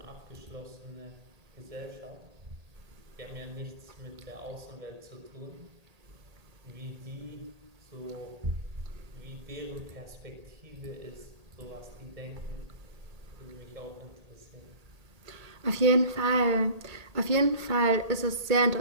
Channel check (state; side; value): late; left; 1.8 ms